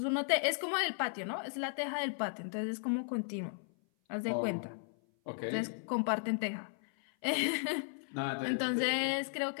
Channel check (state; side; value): silent; right; 54 dB below the other